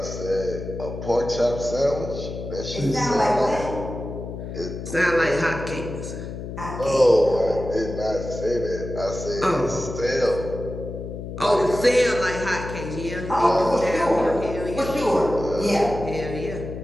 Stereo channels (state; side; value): noise; left; hum, 8 dB below the sound